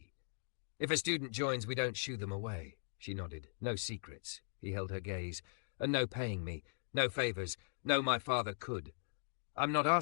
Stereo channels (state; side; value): silent; right; digital silence